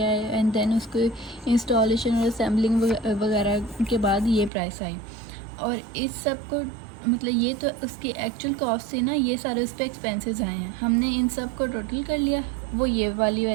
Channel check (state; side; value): drops out; left; at 4.5 s